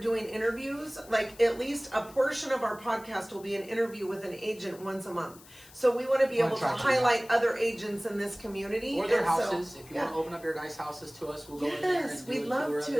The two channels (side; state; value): left; noise; hiss, 22 dB below the sound